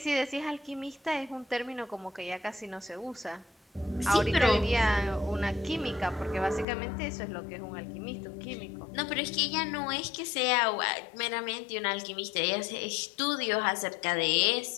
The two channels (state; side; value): drops out; right; at 6.7 s